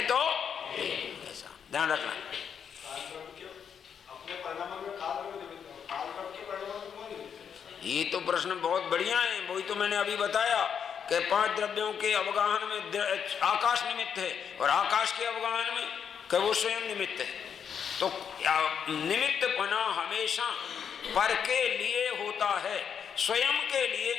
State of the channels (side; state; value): right; quieter; 7.5 dB